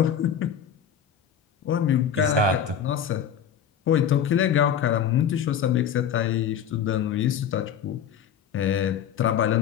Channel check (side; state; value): right; quieter; 8.4 dB